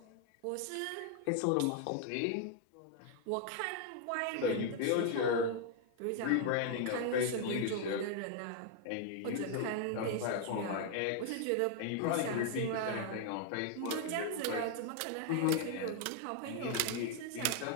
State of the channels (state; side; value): different; both; correlation 0.00